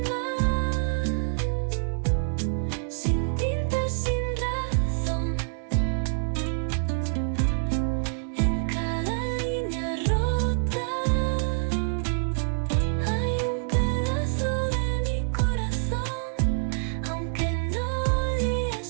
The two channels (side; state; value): left; silent; 60 dB below the other